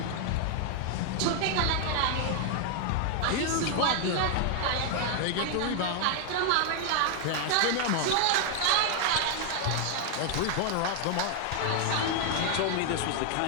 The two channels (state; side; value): different; both; correlation 0.00